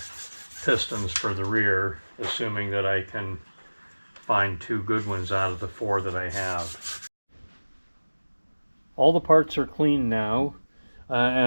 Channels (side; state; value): both; inverted; correlation -1.00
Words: pistons for the rear, assuming that I can find 2 good ones out of the 4 that I have. All the parts are clean now,